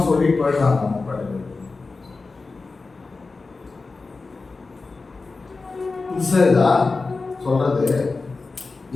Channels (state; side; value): quieter; right; 3.9 dB